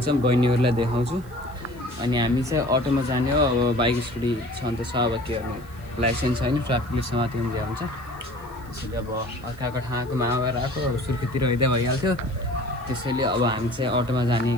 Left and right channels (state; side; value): noise; left; hiss, 28 dB below the sound